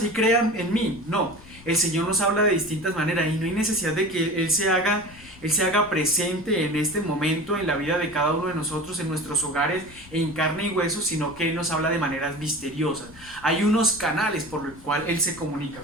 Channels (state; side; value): noise; left; rumble, 21 dB below the sound